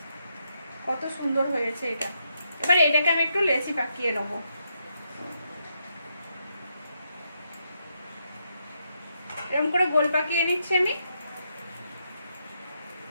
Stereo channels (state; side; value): inverted; both; correlation -0.80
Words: কত সুন্দর হয়েছে এটা। এবার এটাকে আমি একটু লেচি পাকিয়ে নেবো। এরকম করে গোল পাকিয়ে নিচ্ছি আমি।